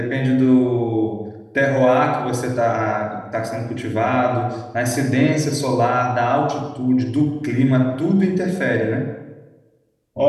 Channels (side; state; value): both; identical; correlation 1.00